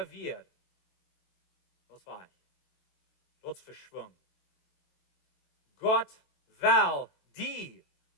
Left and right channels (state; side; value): late; right; 23 ms